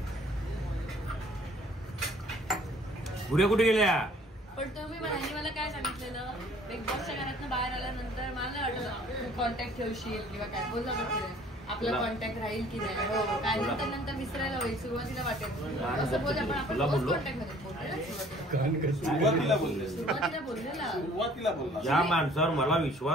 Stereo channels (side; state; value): both; normal; correlation 0.55